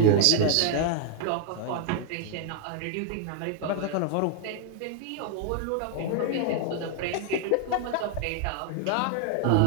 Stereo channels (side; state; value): both; different; correlation 0.00